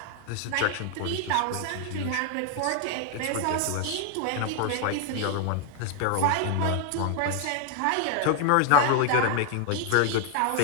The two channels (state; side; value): different; both; correlation 0.00